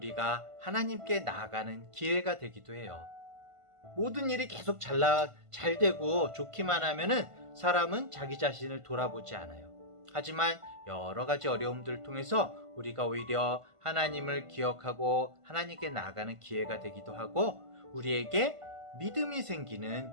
하나님께 나아가는 기회가 되기도 해요. 모든 일이 계속 잘 되고 좋기만 하면은 사람은 자기 자신을 돌아보지 않아요. 하지만 여러 가지 어려움들을 통해서 우리가 오히려 하나님을 기억하고 하나님께 나아가는 기회가 되기도 하고 우리에게 믿음이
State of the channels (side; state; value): left; late; 1.5 ms